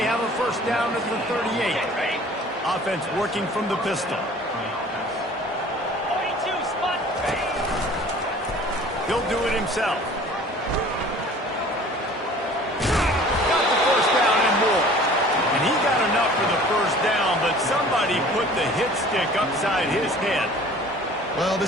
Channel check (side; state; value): both; normal; correlation 0.48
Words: have a first down at the 38. Offense working from the pistol. 42 spot. He'll do it himself. Got the first down and more. And he got enough for the first down, but somebody put the hit stick upside his head. Well,